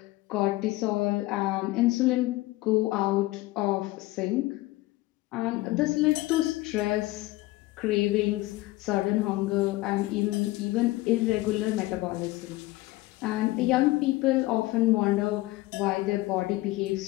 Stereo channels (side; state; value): right; quieter; 19.3 dB